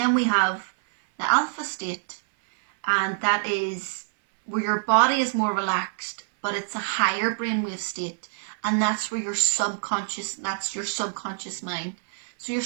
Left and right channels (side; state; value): left; silent; 61 dB below the other